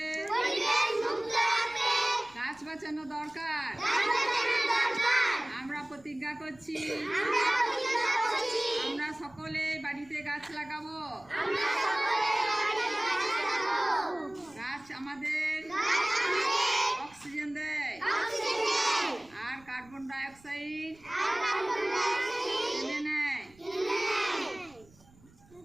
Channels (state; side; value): noise; right; rumble, 27 dB below the sound